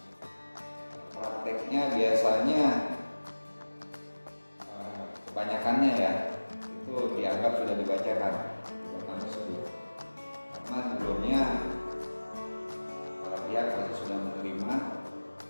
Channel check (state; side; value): inverted; both; correlation -1.00